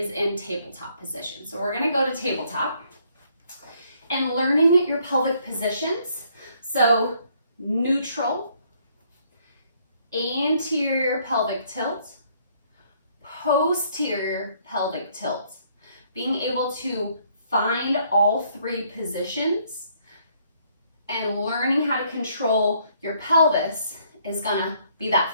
in tabletop position. So we're gonna go to tabletop and learning your pelvic positions. So neutral, anterior pelvic tilt, posterior pelvic tilt. Being able to find all three positions and learning how to control your pelvis is gonna be that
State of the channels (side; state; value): both; inverted; correlation -0.66